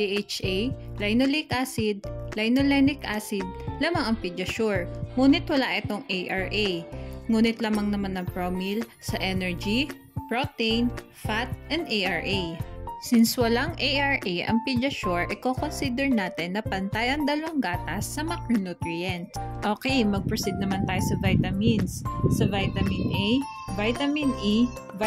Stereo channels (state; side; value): identical; both; correlation 1.00